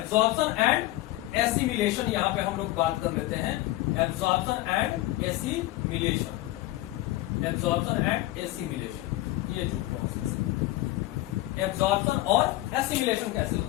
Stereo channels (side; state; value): right; quieter; 17.1 dB